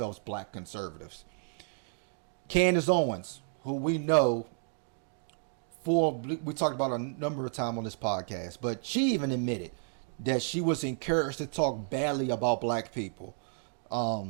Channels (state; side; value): silent; left; 57 dB below the other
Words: black conservatives. Candance Owens, who we know, we talked about a number of times on this podcast, but she even admitted that she was encouraged to talk badly about black people.